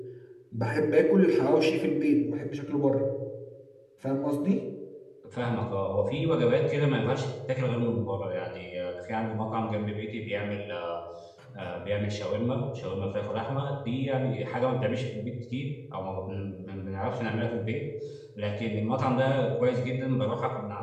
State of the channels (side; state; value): both; identical; correlation 1.00